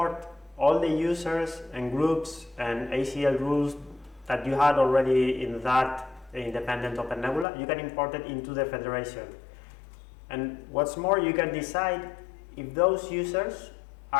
all the users and groups and ACL rules that you had already in that independent OpenNebula. You can import it into the federation. And what's more, you can decide if those users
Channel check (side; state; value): right; drops out; at 7.5 s